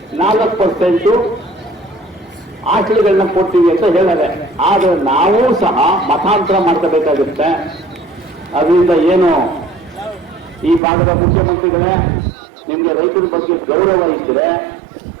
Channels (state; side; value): drops out; left; at 10.8 s